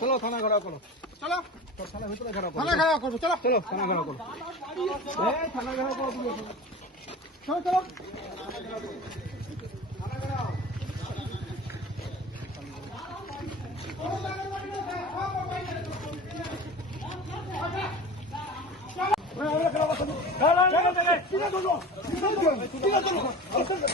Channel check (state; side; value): normal; both; correlation 0.35